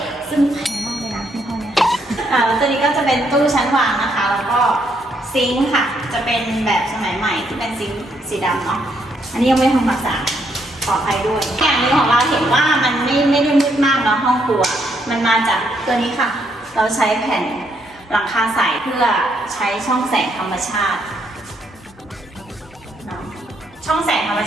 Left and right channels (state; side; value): normal; both; correlation 0.74